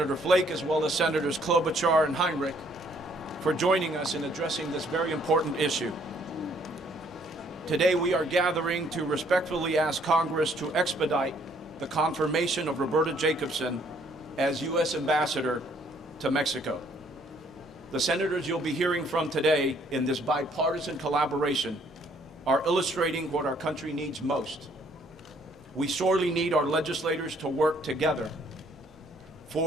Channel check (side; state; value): both; normal; correlation 0.64